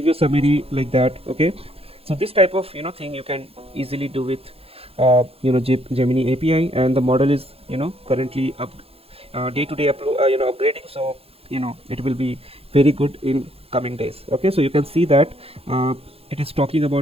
you summary like that. Okay, so this type of thing you can easily do with Gemini API, and the model is currently up day-to-day upgrading, so it will be very good in coming days. Okay, so you can see that it is talking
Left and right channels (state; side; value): late; left; 0.28 ms